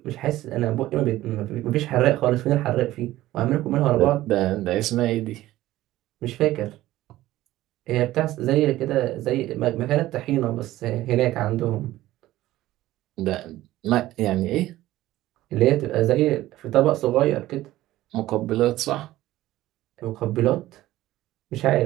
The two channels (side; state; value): left; quieter; 15.7 dB